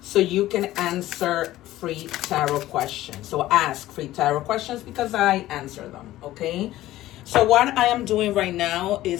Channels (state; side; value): quieter; right; 15.3 dB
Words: so you can answer free tarot questions. So ask free tarot questions because I answer them, okay? So what I am doing right now